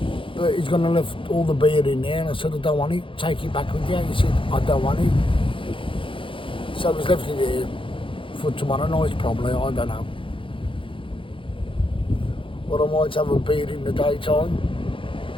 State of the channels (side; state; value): right; late; 0.25 ms